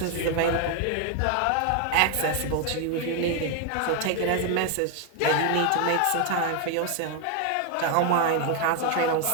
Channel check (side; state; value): both; different; correlation 0.01